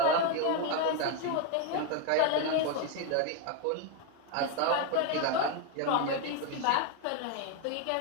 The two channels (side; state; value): both; different; correlation 0.01